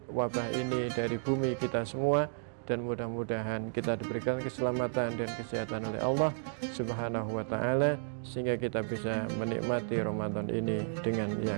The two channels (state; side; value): silent; left; digital silence